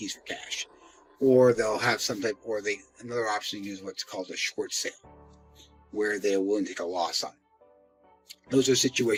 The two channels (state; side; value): identical; both; correlation 1.00